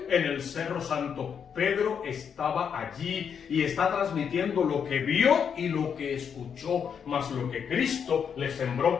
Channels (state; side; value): quieter; right; 7.3 dB